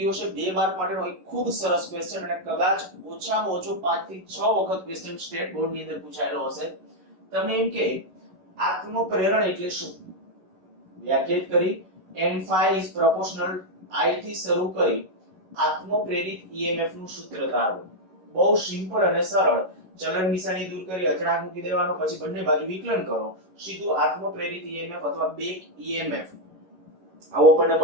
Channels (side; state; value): left; late; 11 ms